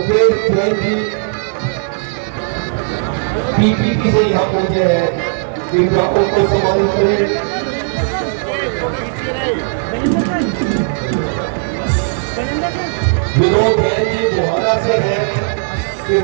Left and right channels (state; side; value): silent; left; digital silence